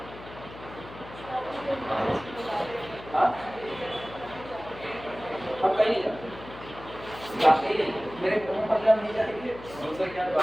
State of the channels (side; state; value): left; noise; hum, 16 dB below the sound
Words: हाँ हम कहीं नहीं जाते। जाते ही नहीं, मेरे मुंह पर जब नहीं जाएंगे उनसे क्या